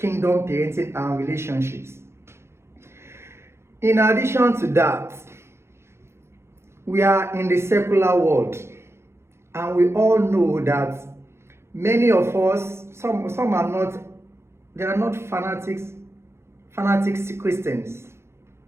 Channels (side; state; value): left; late; 0.13 ms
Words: parenting and relationships. In addition to that, we are in the secular world, and we all know that many of us, some are not, they are not fanatics Christians.